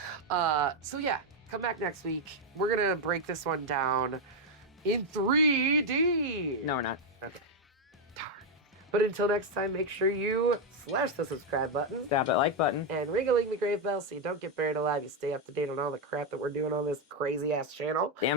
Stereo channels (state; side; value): normal; both; correlation 0.03